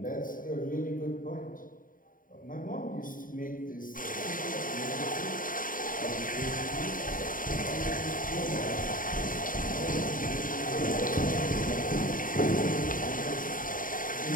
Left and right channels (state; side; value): late; right; 0.40 ms